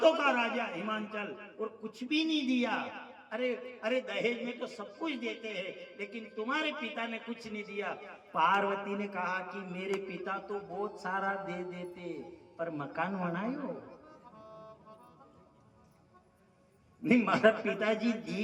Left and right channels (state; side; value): identical; both; correlation 1.00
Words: का राजा हिमांचल, और कुछ भी नहीं दिया। अरे दहेज में तो सब कुछ देते हैं, लेकिन तुम्हारे पिता ने कुछ नहीं दिया। पार्वती ने कहा कि मेरे पिता तो बहुत सारा दे देते, पर मकान बनायो नहीं। मारा पिताजी